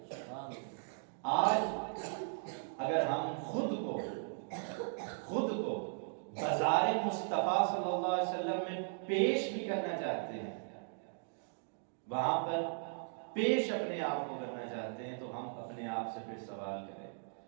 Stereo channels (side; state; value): left; silent; digital silence